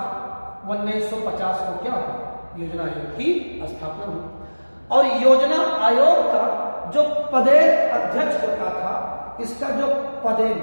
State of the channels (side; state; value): both; inverted; correlation -1.00